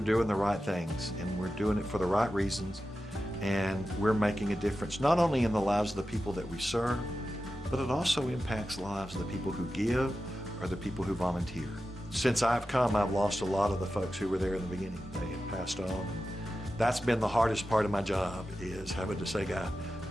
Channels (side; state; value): both; normal; correlation 0.92